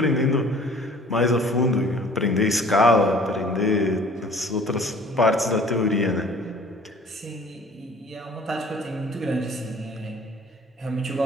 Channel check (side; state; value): both; normal; correlation 0.50